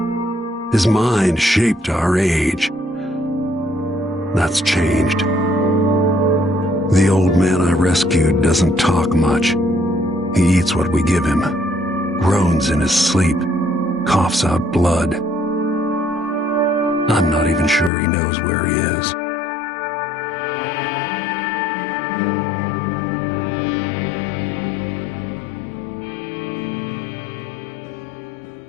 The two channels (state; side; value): drops out; right; at 17.9 s